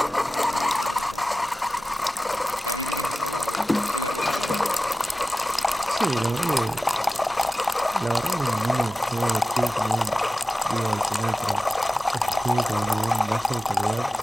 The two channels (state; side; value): normal; both; correlation 0.95